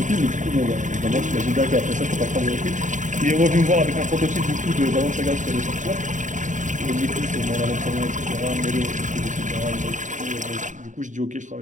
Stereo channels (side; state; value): left; late; 0.36 ms